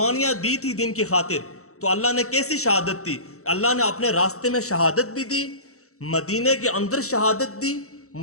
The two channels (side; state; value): right; late; 0.64 ms